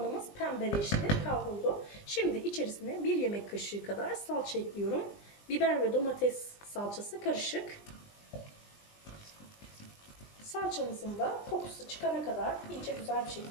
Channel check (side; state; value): right; late; 20 ms